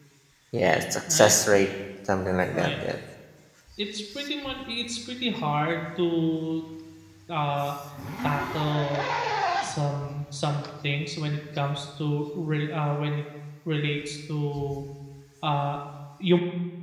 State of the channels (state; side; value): identical; both; correlation 1.00